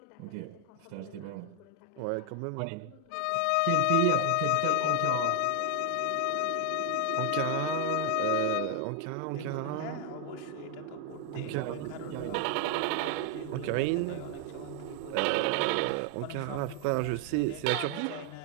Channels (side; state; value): both; different; correlation 0.00